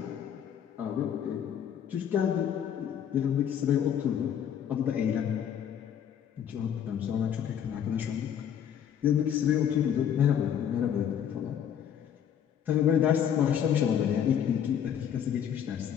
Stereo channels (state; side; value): quieter; right; 9.0 dB